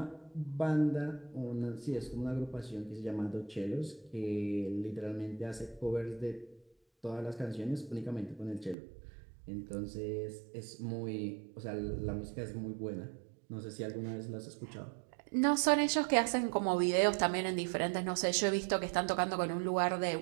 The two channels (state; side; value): drops out; left; at 8.8 s